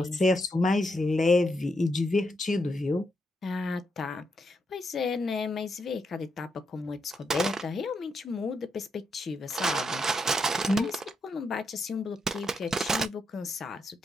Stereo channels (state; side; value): normal; both; correlation 0.81